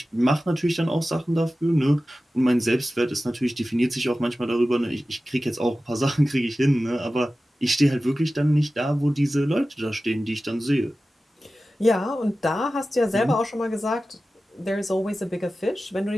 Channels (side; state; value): both; normal; correlation 0.95